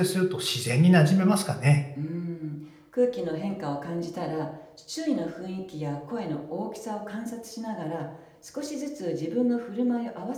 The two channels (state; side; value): identical; both; correlation 1.00